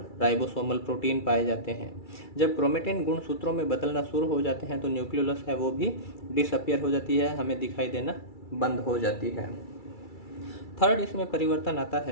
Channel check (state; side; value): late; right; 2.3 ms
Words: राइबोसोमल प्रोटीन पाए जाते हैं। जब क्रोमेटिन गुणसूत्रों में बदलना शुरू हो जाते हैं तो न्यूक्लियोलस है वो भी डिसअपियर हो जाती है, हमें दिखाई देना बंद हो जाती है। थर्ड, इसमें परिवर्तन आता